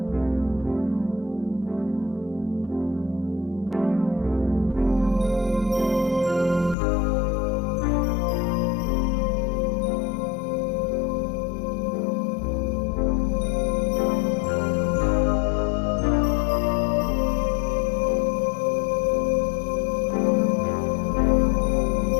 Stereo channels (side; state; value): right; drops out; at 6.8 s